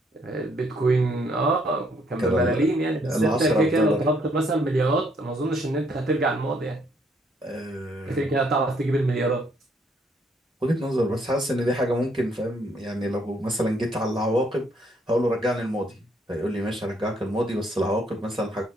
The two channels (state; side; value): normal; both; correlation 0.68